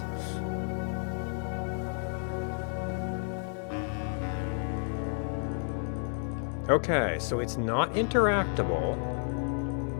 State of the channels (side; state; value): right; silent; 57 dB below the other